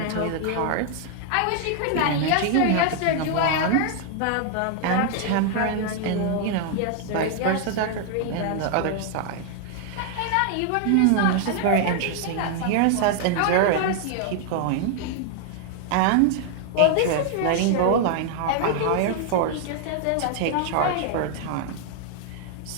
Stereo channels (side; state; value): both; different; correlation 0.00